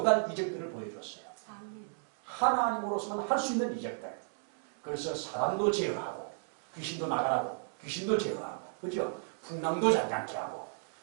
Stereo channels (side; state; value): left; silent; digital silence